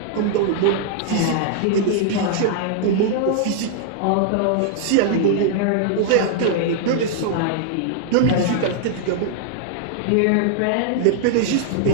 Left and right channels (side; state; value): both; different; correlation -0.01